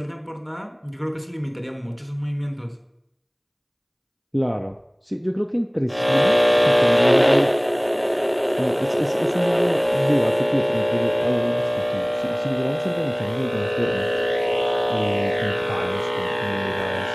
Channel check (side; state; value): both; identical; correlation 1.00